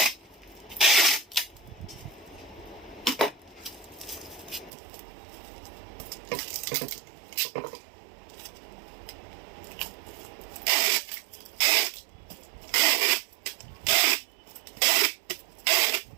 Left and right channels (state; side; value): drops out; left; at 4.7 s